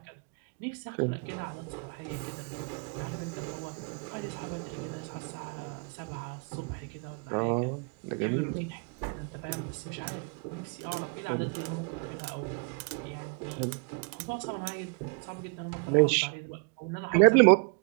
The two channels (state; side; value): quieter; left; 36.7 dB